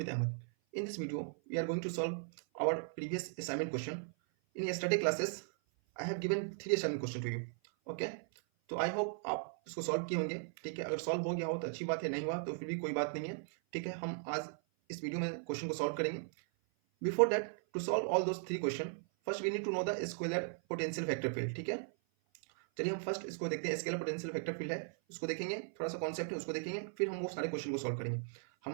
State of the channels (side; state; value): left; silent; 53 dB below the other